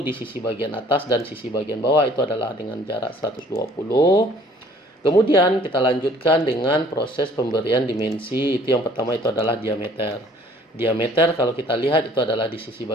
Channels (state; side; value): normal; both; correlation 0.56